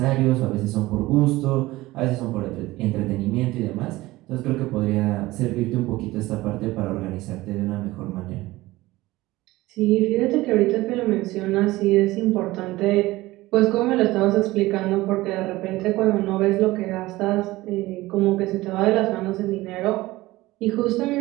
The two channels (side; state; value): left; quieter; 18.6 dB